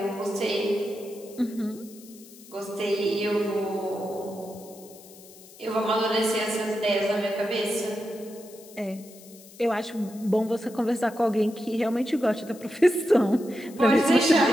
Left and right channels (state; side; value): noise; left; hiss, 21 dB below the sound